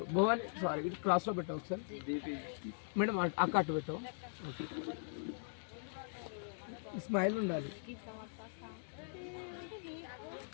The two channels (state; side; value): silent; right; digital silence